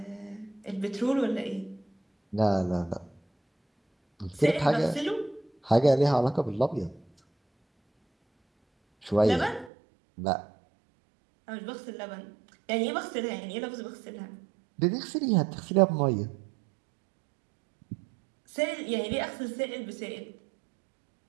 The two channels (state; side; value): drops out; left; at 9.7 s